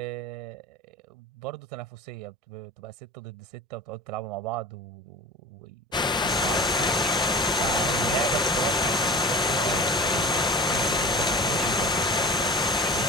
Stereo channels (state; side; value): normal; both; correlation 0.37